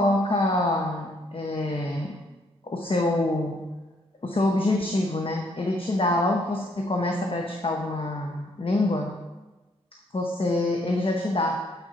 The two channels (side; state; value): both; normal; correlation 0.69